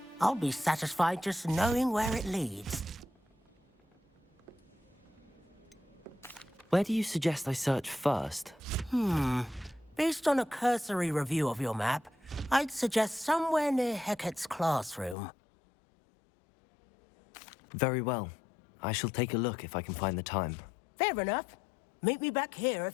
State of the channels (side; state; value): right; drops out; at 15.2 s